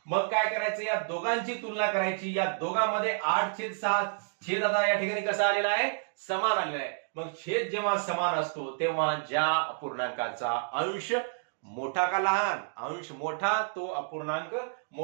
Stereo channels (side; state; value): left; silent; digital silence